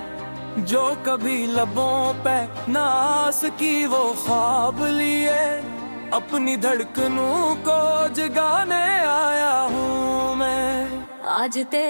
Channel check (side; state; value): both; inverted; correlation -1.00